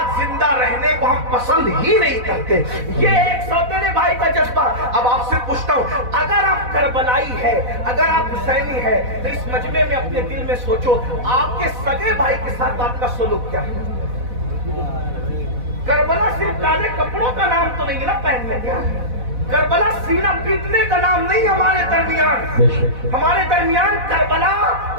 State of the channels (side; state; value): left; late; 4.1 ms